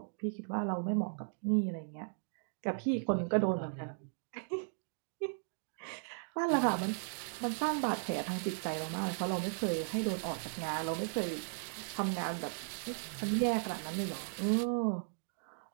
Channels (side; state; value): left; silent; digital silence